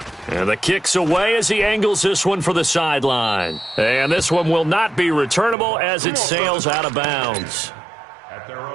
And the kick's away as he angles this one for the sideline. And this one will not be returnable as it sails out of bounds. At their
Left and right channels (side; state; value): left; drops out; at 5.6 s